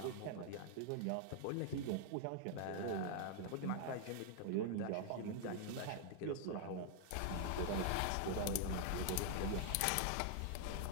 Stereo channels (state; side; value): different; both; correlation 0.00